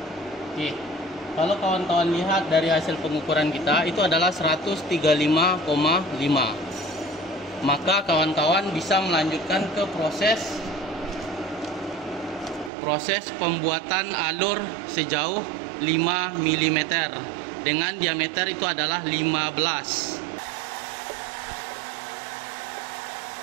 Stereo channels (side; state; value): left; drops out; at 12.7 s